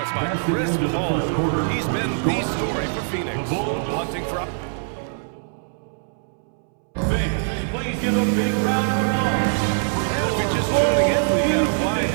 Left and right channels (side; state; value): left; silent; 64 dB below the other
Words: by Chris Paul. He's been the story for Phoenix. Hunting for... Fans, please give a big round of applause. And if you're just tuning in, we've got a wide